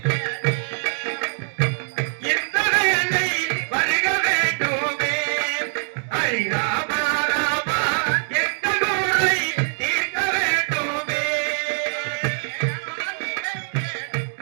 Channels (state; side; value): silent; left; 63 dB below the other